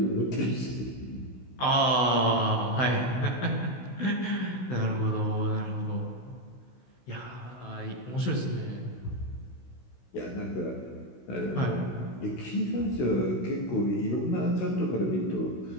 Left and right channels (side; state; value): right; late; 16 ms